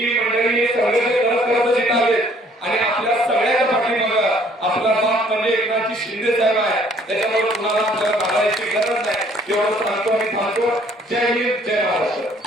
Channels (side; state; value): both; normal; correlation 0.60